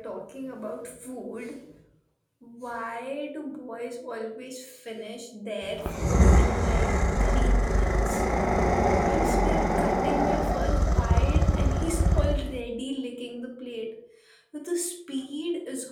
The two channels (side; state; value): both; identical; correlation 1.00